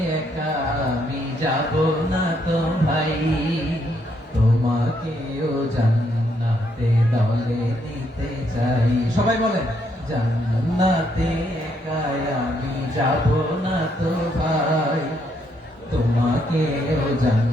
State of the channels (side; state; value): both; normal; correlation 0.74